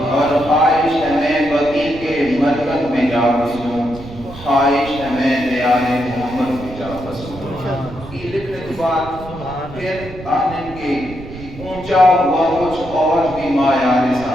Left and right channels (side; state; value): right; noise; rumble, 14 dB below the sound